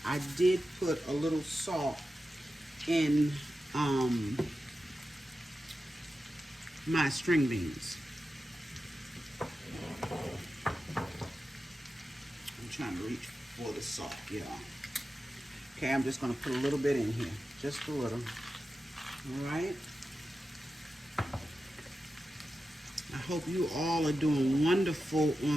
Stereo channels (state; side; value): normal; both; correlation 0.92